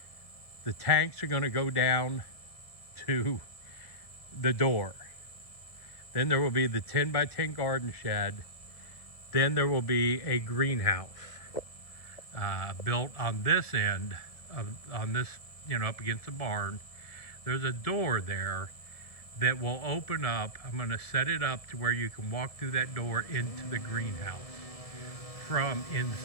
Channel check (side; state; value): right; late; 1.7 ms